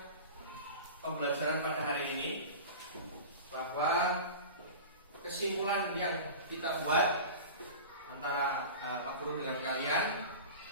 pembelajaran pada hari ini, bahwa kesimpulan yang kita buat antara Pak Guru dengan kalian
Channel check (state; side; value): inverted; both; correlation -0.33